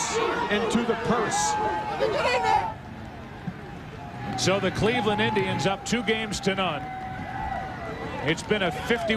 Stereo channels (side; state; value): both; identical; correlation 1.00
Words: into the purse. So the Cleveland Indians up 2-0. It's been a